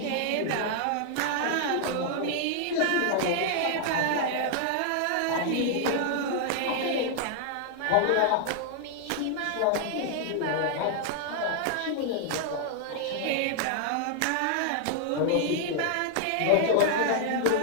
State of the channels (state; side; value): different; both; correlation 0.00